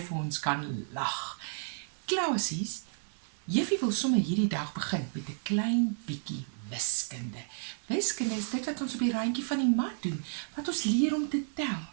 ons kan lag? Klasies, Juffie wil sommer hierdie dag begin met 'n klein bietjie wiskunde. Wiskunde is dit wat ons op die randjie van die mat doen, wat ons leer om te tel.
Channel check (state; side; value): silent; left; 57 dB below the other